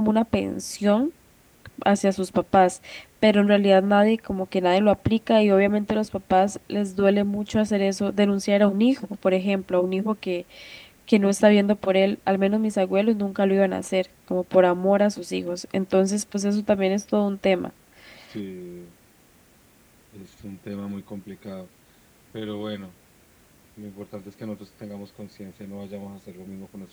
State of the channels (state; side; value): identical; both; correlation 1.00